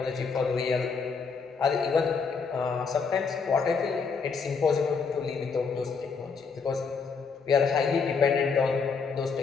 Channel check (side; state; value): right; quieter; 5.3 dB